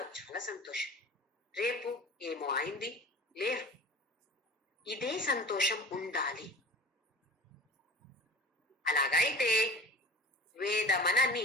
చాలా సంతోషం. రేపు ఏమో అయింది, లేరు. ఇదే సంతోషం ఉండాలి. అలాగైతే వేద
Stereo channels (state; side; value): normal; both; correlation 0.39